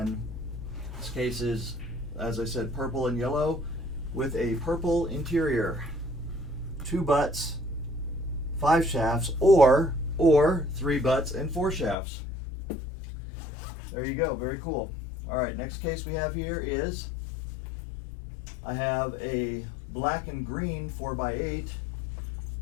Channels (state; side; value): drops out; right; at 12.0 s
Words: this case is, as I said, purple and yellow with a purple interior. 2 butts, 5 shafts, or 3 butts and 4 shafts. There you go, very cool. All right, next case we have here is, I have a black and green 4x8.